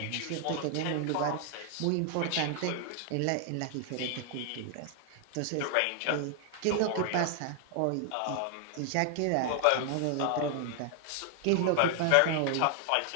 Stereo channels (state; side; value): different; both; correlation 0.00